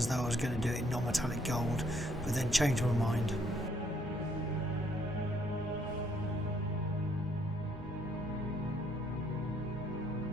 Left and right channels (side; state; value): both; normal; correlation 0.68